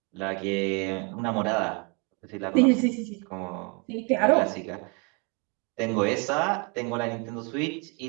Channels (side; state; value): left; quieter; 32.0 dB